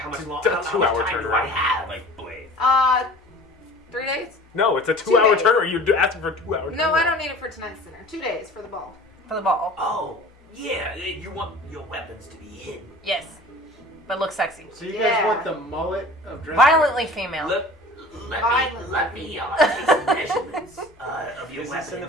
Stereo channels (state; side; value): normal; both; correlation 0.43